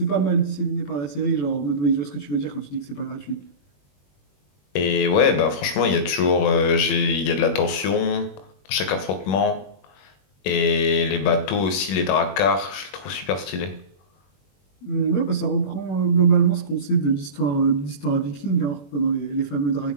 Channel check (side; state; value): right; late; 21 ms